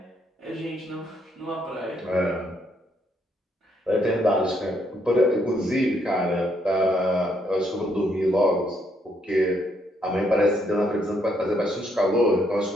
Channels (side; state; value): both; normal; correlation 0.73